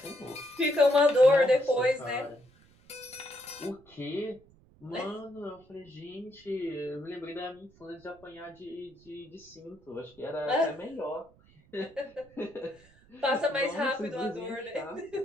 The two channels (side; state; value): right; noise; rumble, 28 dB below the sound